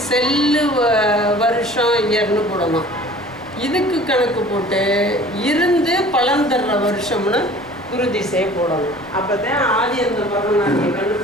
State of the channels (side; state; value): left; noise; rumble, 28 dB below the sound